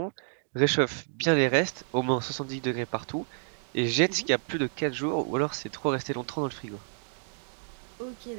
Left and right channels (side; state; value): left; silent; digital silence